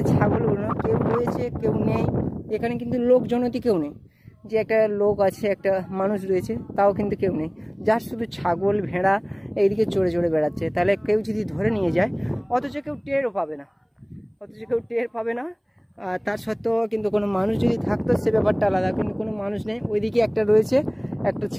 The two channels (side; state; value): both; identical; correlation 1.00